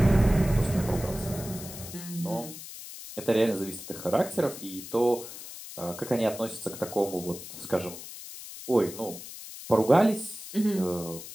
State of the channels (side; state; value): left; noise; hiss, 12 dB below the sound